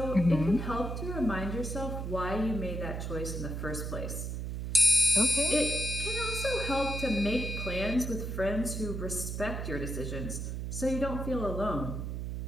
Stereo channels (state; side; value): noise; right; hum, 4 dB below the sound